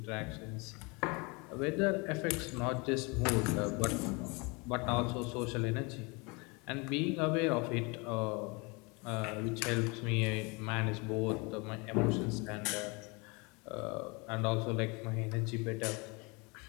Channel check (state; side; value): quieter; right; 28.8 dB